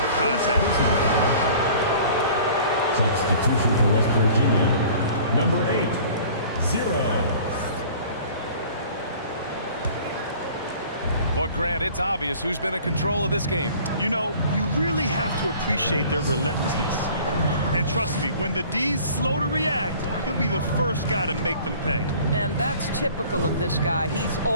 contact. Substitution for West Virginia, number 8, 0. But Grant, it's obvious who's been in control of this game. You know, you really have to appreciate their relentlessness. And trust me, when the D's slow to react, he'll be the first guy to make them pay. And that's typical of this guy. He's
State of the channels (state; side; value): inverted; both; correlation -0.48